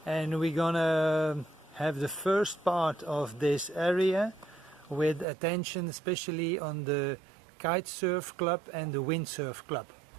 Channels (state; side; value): drops out; left; at 5.2 s